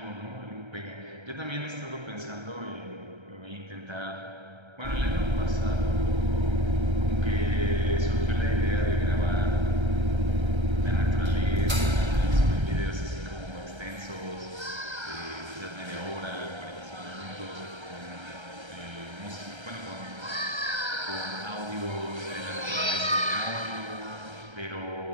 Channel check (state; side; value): late; left; 1.3 ms